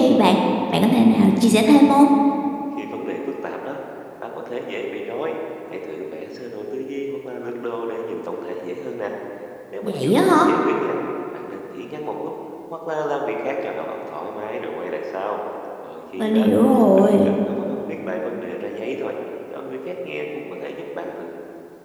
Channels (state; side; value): identical; both; correlation 1.00